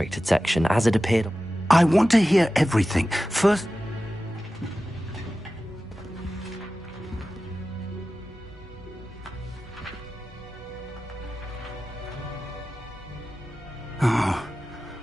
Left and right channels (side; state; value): both; normal; correlation 0.94